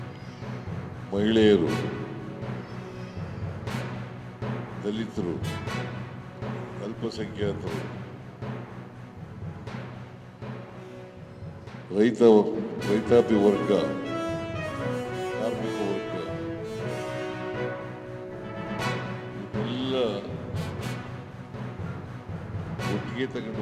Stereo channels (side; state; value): both; identical; correlation 1.00